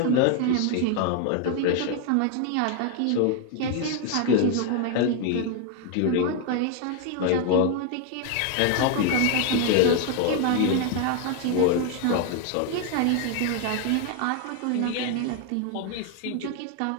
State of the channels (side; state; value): both; different; correlation 0.00